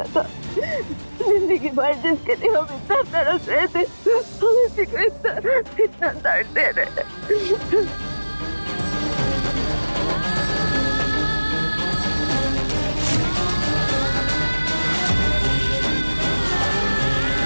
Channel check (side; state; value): both; inverted; correlation -1.00